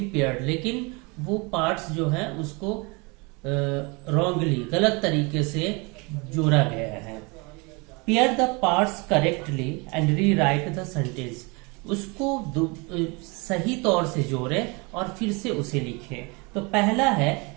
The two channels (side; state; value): left; quieter; 28.7 dB